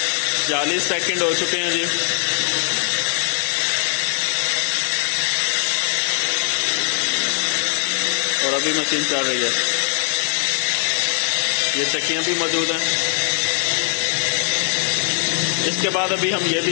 चालीस सेकंड हो चुके हैं जी। और अभी मशीन चल रही है। ये चक्कियां भी मौजूद हैं। इसके बाद अभी हम ये भी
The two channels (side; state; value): right; silent; digital silence